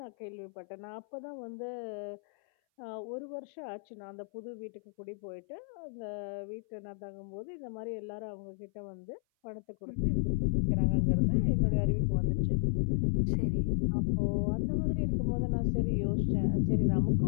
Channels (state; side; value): silent; right; 56 dB below the other